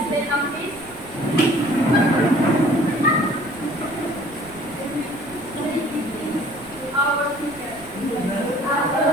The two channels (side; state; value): right; noise; rumble, 21 dB below the sound